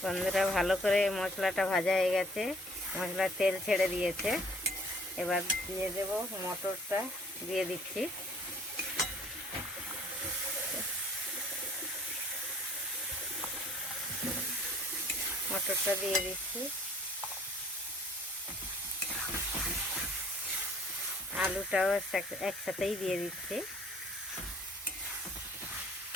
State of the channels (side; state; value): both; normal; correlation 0.56